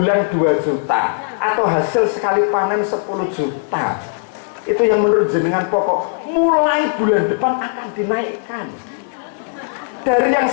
2 juta atau hasil sekali panen 10 juta. Itu yang menurut jenengan pokok. Mulai bulan depan akan dinaikkan. Dari yang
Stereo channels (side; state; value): right; silent; 65 dB below the other